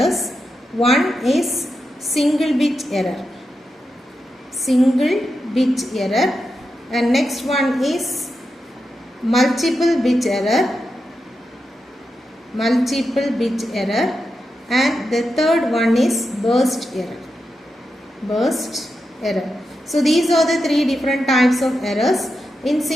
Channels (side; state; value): both; normal; correlation 0.88